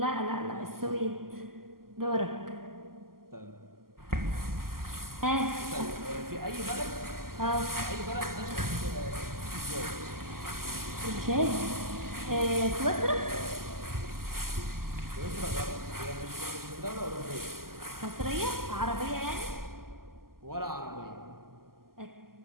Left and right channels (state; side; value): late; left; 0.92 ms